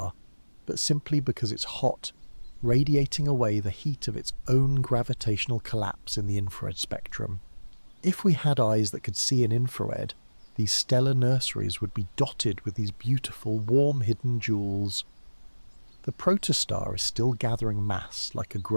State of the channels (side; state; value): both; inverted; correlation -1.00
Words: but simply because it's hot, radiating away the heat of its own gravitational collapse in the infrared spectrum. If we had eyes that could see in infrared, these stellar nurseries would be dotted with these beautiful, warm hidden jewels. The protostar is still gathering mass like a